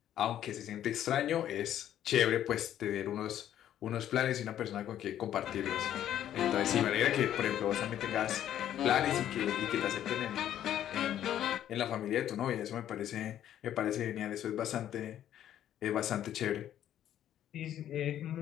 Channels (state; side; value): quieter; right; 11.2 dB